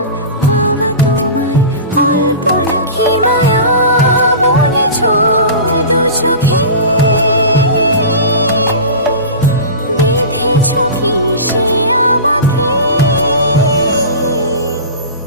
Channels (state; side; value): inverted; both; correlation -0.32